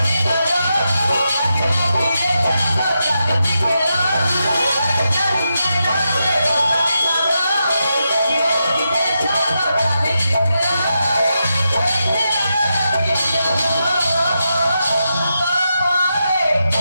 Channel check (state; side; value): inverted; both; correlation -0.86